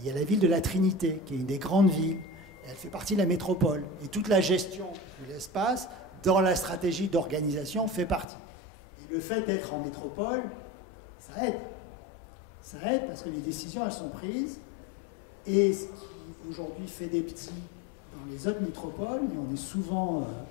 y a la ville de la Trinité, qui est une des grandes villes, et elle fait partie de la métropole. Et toute la gestion de l'espace, dans la stratégie d'organisation, fait partie. Et le fait d'être en métropole, ça aide. Ça aide parce que les décisions, elles sont prises. Et ce qui, aujourd'hui, fait des petits dans les autres métropoles, et on est souvent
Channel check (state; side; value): drops out; right; at 8.2 s